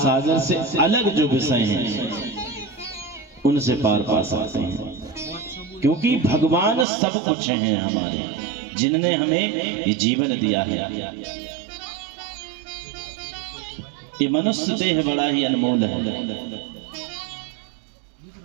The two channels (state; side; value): drops out; left; at 6.9 s